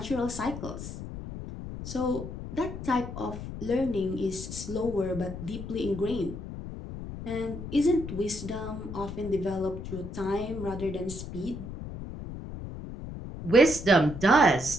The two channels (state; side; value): noise; left; rumble, 9 dB below the sound